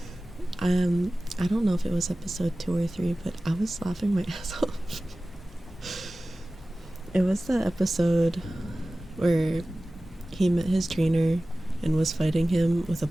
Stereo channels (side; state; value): both; normal; correlation 0.97